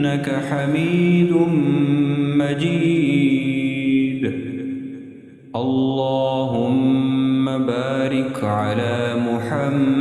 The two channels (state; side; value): identical; both; correlation 1.00